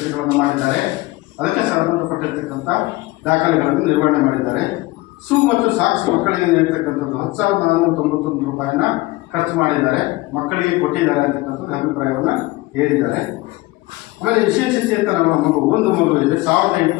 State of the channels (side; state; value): right; quieter; 20.4 dB